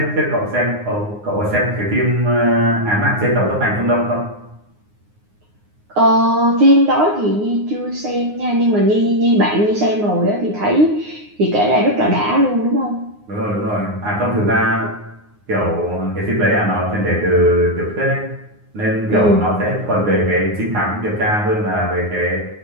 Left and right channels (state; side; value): late; left; 9.6 ms